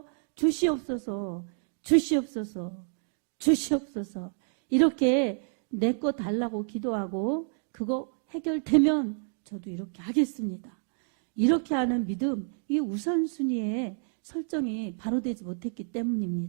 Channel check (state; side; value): silent; left; 57 dB below the other